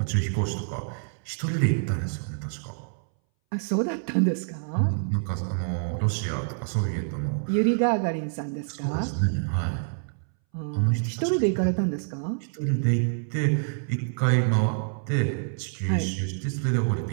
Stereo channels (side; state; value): left; silent; 60 dB below the other